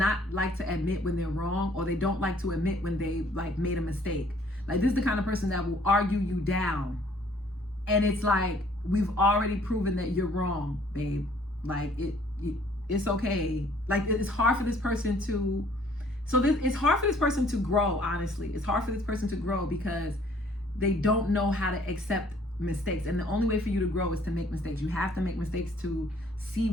like to admit when they're wrong, or they don't like to admit when they like made a mistake. Like this is the kind of person that will argue you down. And it's like, we've already proven that you're wrong, babe. Like it's okay. Like it's hard for this person to, it's hard for this person to grow, honestly. It's hard for this person to grow because they don't know how to accept mistakes. And the only way for you to grow is to make mistakes. You have to make mistakes to see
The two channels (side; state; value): both; normal; correlation 0.59